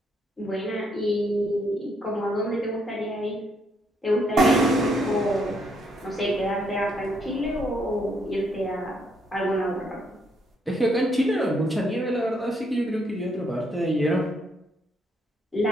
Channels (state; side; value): normal; both; correlation 0.72